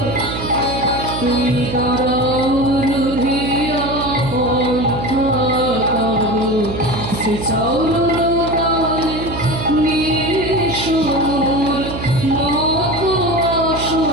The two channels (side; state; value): right; noise; hum, 7 dB below the sound